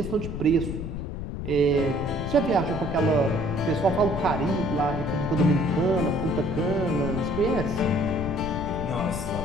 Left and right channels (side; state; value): left; noise; rumble, 6 dB below the sound